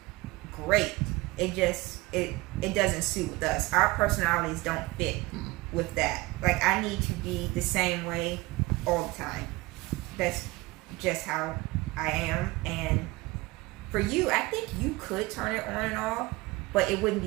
great. It doesn't suit with us. Our personalities don't fit with that. Like, I need to be the same way all the time. That's just how I am, and For you, I think you could turn it on and off, but it wouldn't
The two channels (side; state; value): left; quieter; 21.9 dB